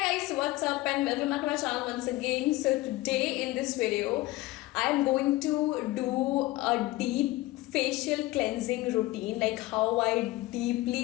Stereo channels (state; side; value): quieter; right; 18.9 dB